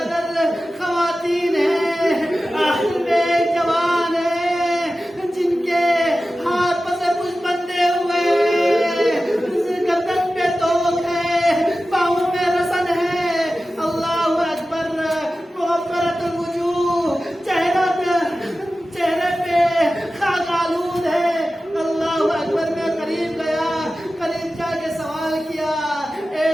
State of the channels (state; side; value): normal; both; correlation 0.94